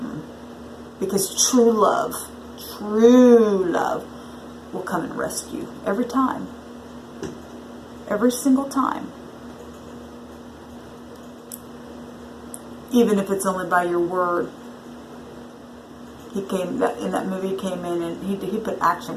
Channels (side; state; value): both; identical; correlation 1.00